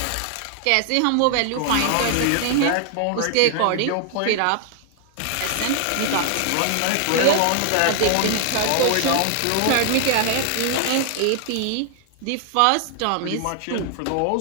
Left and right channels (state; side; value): different; both; correlation 0.00